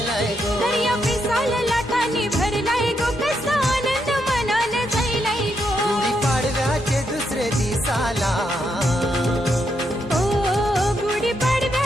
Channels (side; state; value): both; normal; correlation 0.80